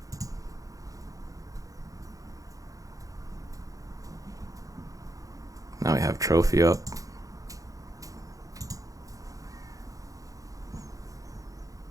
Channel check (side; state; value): left; late; 0.17 ms